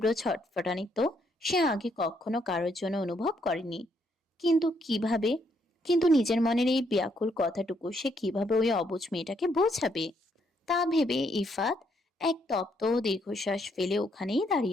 ছটফটানি তো সে আগে কখনো কারোর জন্য অনুভব করেনি। কিন্তু কিভাবে, কিন্তু নিজের মনের এই ব্যাকুল কথাটুকু সে কিভাবে ওই অবুঝ মেয়েটাকে বোঝাবে? তা ভেবে ইফাত এক তপ্ত দীর্ঘশ্বাস ফেলে ওখানেই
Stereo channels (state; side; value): normal; both; correlation 0.73